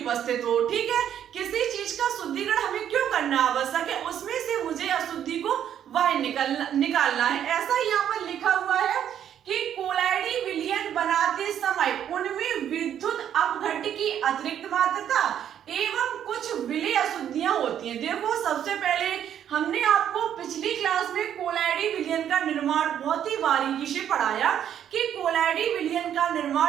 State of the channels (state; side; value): quieter; left; 9.8 dB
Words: हो, ठीक है। किसी चीज का शुद्धिकरण हमें क्यों करना आवश्यक है, उसमें से मुझे अशुद्धि को बाहर निकालना है। ऐसा यहाँ पर लिखा हुआ है कि कोलाइडी विलियन बनाते समय उनमें विद्युत अपघट्ट की अतिरिक्त मात्रा एवं कुछ विलेय अशुद्धियां होती हैं। देखो, सबसे पहले हमने आपको पिछली क्लास में कोलाइडी विलियन का निर्माण बहुत ही बारीकी से पढ़ाया कि कोलाइडी विलियन का